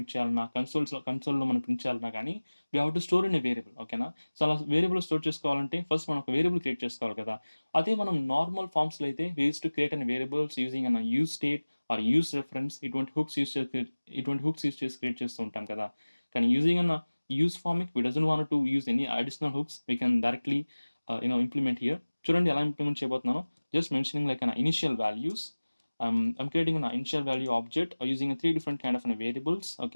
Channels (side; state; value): both; inverted; correlation -1.00